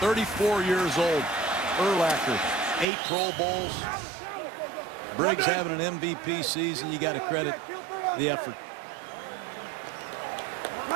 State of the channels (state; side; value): drops out; left; at 2.9 s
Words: years old. Urlacher, 8 Pro Bowls. Briggs having an MVP season. You got to credit the effort.